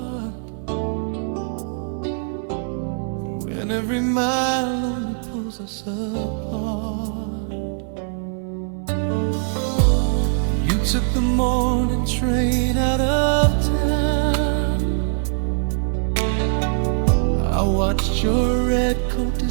when every mile only pulls us apart. You took the morning train out of town. I watched your red coat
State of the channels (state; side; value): silent; left; digital silence